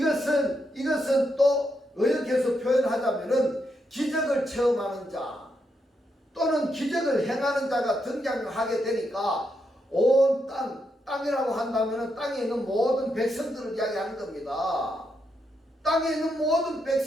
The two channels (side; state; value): both; normal; correlation 0.81